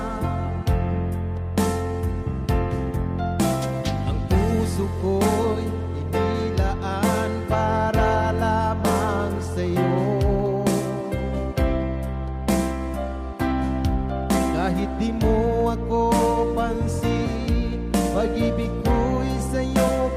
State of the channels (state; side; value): identical; both; correlation 1.00